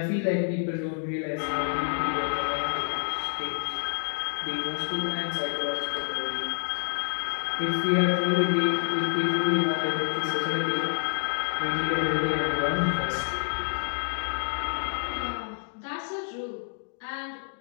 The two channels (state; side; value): silent; right; digital silence